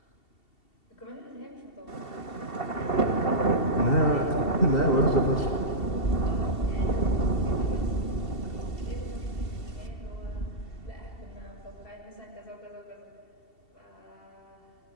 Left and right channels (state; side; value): late; right; 2.7 ms